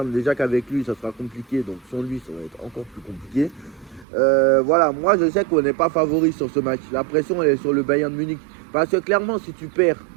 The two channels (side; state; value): left; drops out; at 4.0 s